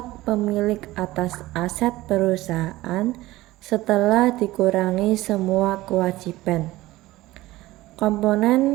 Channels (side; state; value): left; quieter; 17.7 dB